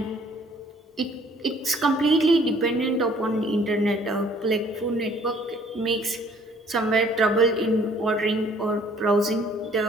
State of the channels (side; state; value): both; normal; correlation 0.58